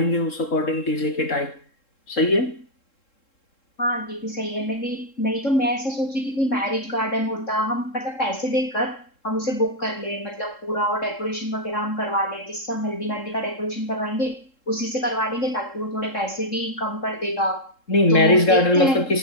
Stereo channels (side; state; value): right; late; 3.7 ms